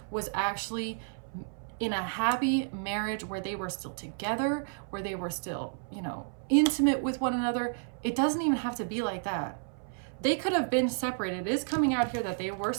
was actually in a happy marriage where they were still together, where they were still, you know, intimate with one another. It doesn't even have to be like that. They could have been separated. It is coming out here that they were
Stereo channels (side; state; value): left; silent; 57 dB below the other